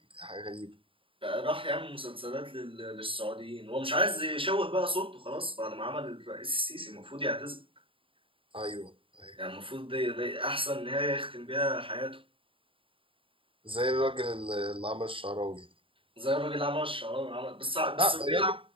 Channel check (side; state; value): left; late; 0.26 ms